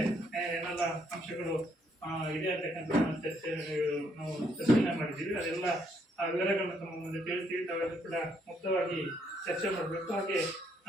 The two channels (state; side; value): normal; both; correlation 0.72